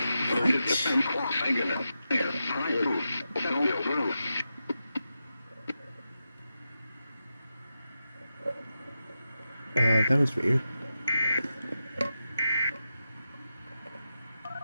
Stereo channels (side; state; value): both; inverted; correlation -0.89